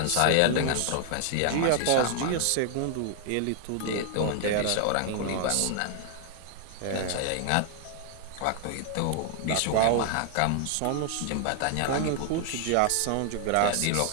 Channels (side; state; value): both; different; correlation 0.00